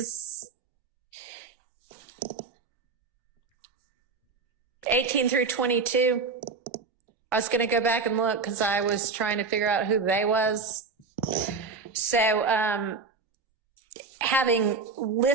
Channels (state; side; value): quieter; left; 4.6 dB